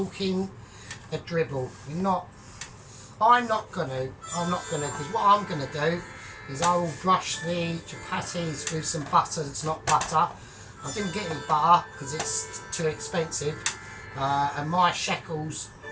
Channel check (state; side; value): identical; both; correlation 1.00